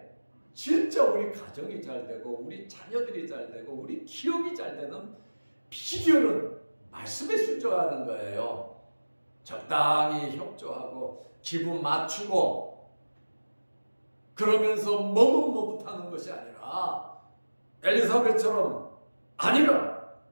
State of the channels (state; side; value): inverted; both; correlation -1.00